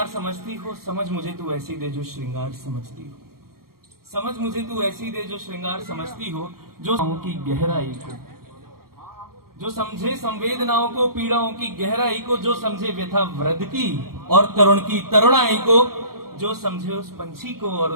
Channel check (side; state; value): left; late; 0.93 ms